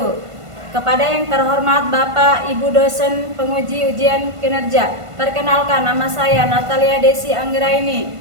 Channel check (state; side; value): late; left; 1.5 ms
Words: Kepada yang terhormat Bapak, Ibu dosen penguji ujian kinerja, perkenalkan nama saya Natalia Desi Anggraini.